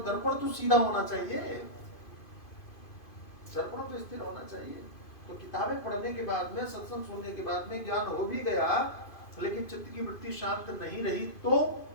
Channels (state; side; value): late; right; 2.5 ms